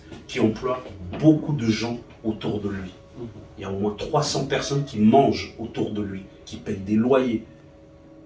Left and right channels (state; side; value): identical; both; correlation 1.00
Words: qui emploie beaucoup de gens autour de lui. Il y a au moins 300 personnes qui mangent autour de lui, qui payent des loyers.